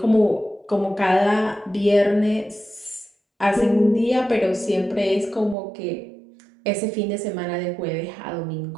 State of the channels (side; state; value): left; drops out; at 5.6 s